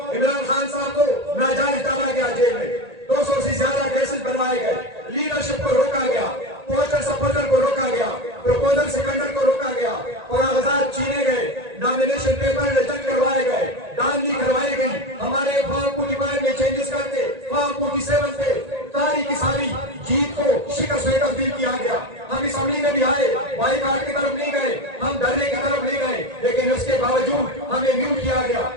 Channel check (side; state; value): left; late; 1.9 ms